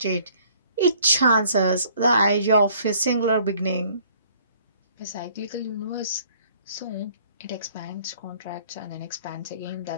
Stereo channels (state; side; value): inverted; both; correlation -0.58